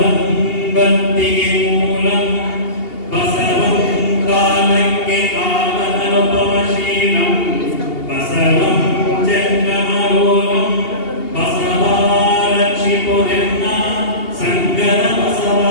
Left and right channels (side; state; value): right; late; 2.8 ms